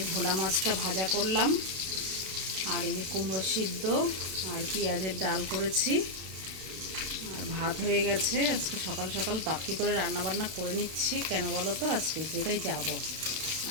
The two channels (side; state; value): left; late; 32 ms